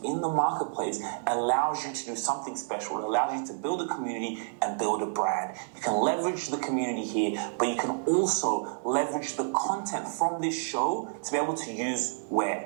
in the marketplace allows you to do something special. It allows you to build a community and build a brand. You can leverage the community here, but you can also leverage the content from this show to be able to use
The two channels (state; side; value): silent; left; 58 dB below the other